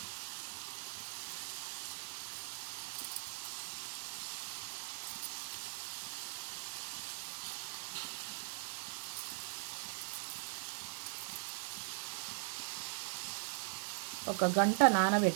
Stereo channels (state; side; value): silent; left; digital silence